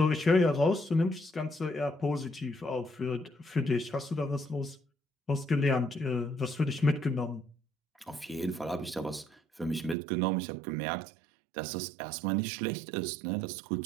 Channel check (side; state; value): left; drops out; at 10.0 s